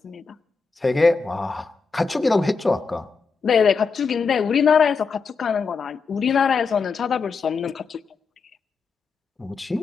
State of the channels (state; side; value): quieter; right; 5.0 dB